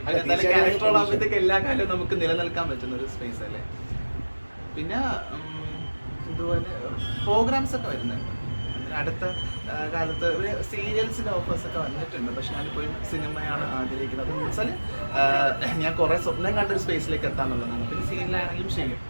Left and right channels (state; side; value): inverted; both; correlation -1.00